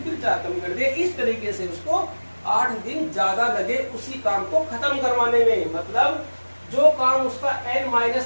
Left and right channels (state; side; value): inverted; both; correlation -1.00